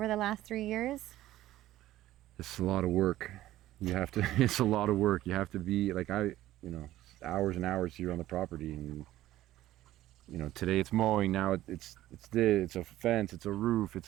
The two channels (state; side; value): quieter; left; 14.7 dB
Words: the last 3 years? It's a lot of work. You have to, it's a lot of work. You have to be like, hours and hours here on the property. And, today it's mowing. Now it's this, it's a fence, it's a roof, it's